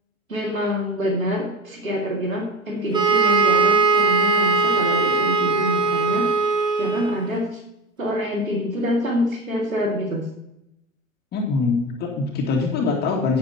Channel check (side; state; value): both; normal; correlation 0.27